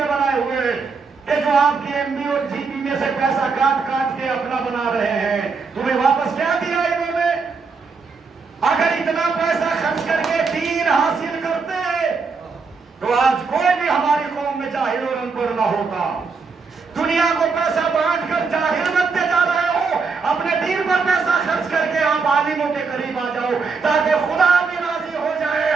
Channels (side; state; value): left; quieter; 4.8 dB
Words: بنائے ہوئے ہیں کہ جو آپ کی ایم بی اور جی بی میں سے پیسہ کاٹ کاٹ کے اپنا بنا رہے ہیں۔ تمہیں واپس کیا دیا انہوں نے؟ اگر اتنا پیسہ خرچ کر کے دین حاصل کرتے تو آج کوئی بھی ہماری قوم میں جاہل اور ان پڑھ نہ ہوتا۔ دنیا کو پیسہ بانٹ کر جاہل بنتے جا رہے ہو، اپنے دین پر پیسہ خرچ کر کے آپ عالموں کے قریب آ جاؤ تاکہ خدا بھی راضی ہو جائے،